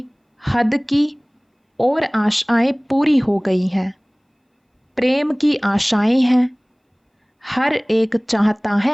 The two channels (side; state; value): both; identical; correlation 1.00